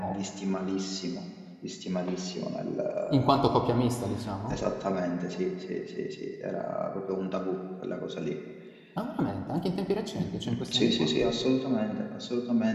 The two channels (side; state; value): both; identical; correlation 1.00